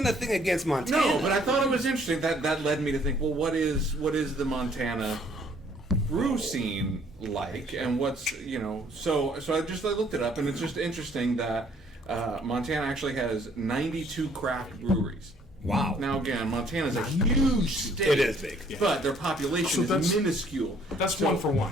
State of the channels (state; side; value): normal; both; correlation 0.62